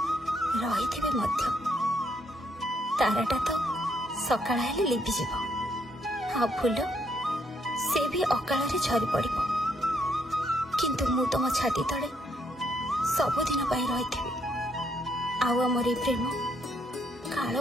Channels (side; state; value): both; normal; correlation 0.73